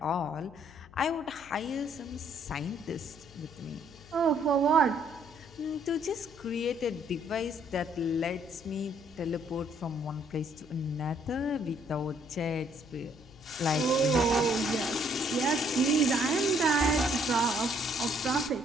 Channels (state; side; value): noise; left; hum, 22 dB below the sound